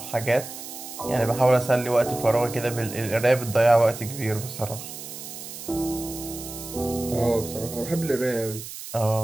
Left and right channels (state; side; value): noise; right; hiss, 11 dB below the sound